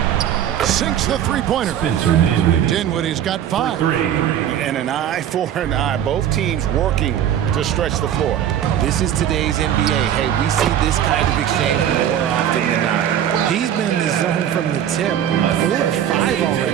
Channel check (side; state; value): left; quieter; 10.2 dB